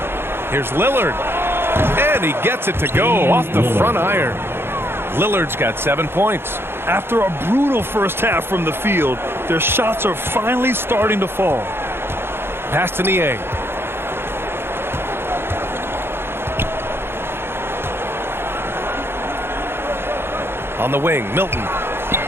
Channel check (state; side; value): late; left; 0.11 ms